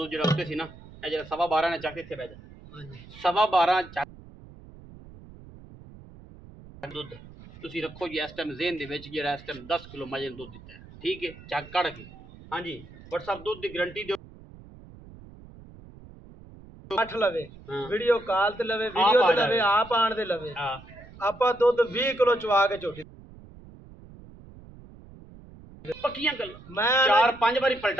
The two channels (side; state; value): right; noise; rumble, 19 dB below the sound